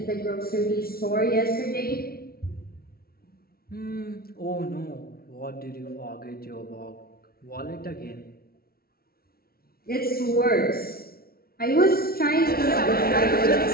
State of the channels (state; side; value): late; right; 0.44 ms